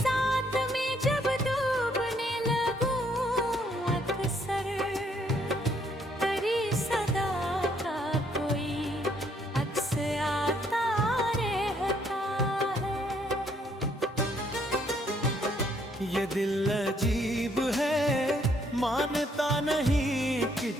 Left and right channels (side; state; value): both; normal; correlation 0.68